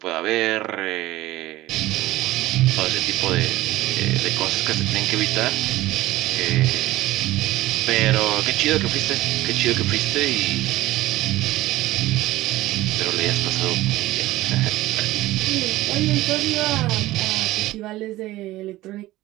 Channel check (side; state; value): left; quieter; 17.0 dB